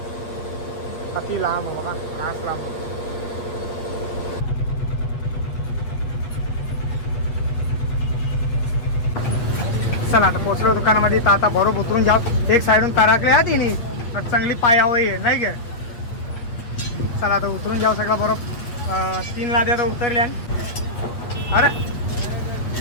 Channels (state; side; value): late; right; 8.3 ms